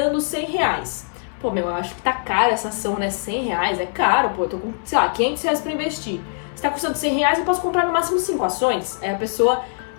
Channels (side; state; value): right; silent; 64 dB below the other